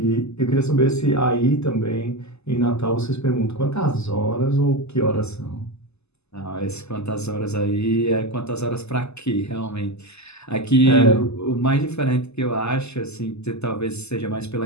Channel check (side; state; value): right; late; 0.80 ms